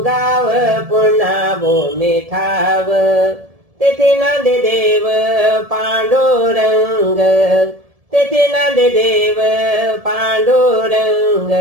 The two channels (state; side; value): late; left; 1.7 ms